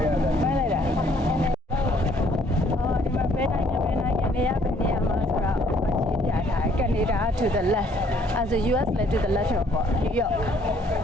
မိုက်လိုက်တာဒီမှာဘယ်နိုင်ငံနေရမှာဆိုတာရှင်းပြထားတယ်ကနေဒါ to the left as a US လည်း to the left ပေါ့ New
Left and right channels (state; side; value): normal; both; correlation 0.63